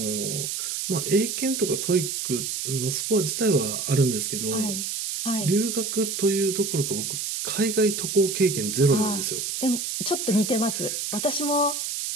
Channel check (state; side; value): noise; right; hiss, 3 dB below the sound